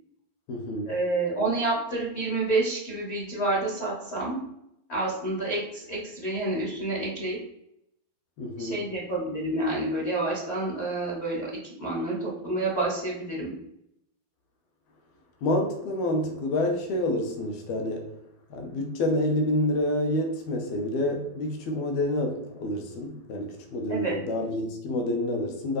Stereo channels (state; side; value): late; right; 12 ms